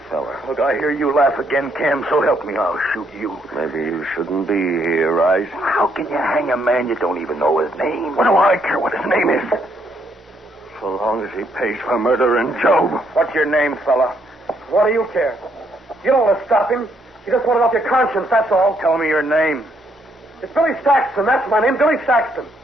fella? Look, I hear you laugh again, Cam, so help me, I'll shoot you. Maybe you shouldn't be here, Rice. How can you hang a man you don't even know his name? What do I care what his name is? So long as he pays for murdering Job. What's your name, fella? What do you care? You don't want to stop him. You just want it off your conscience, that's all. Tell me your name. It's Billy Saxton, that's my name, Billy Saxton.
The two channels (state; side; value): normal; both; correlation 0.72